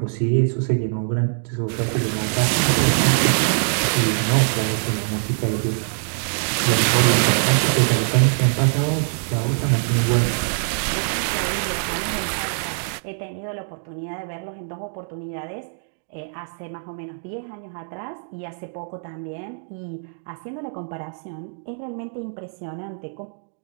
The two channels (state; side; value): silent; left; digital silence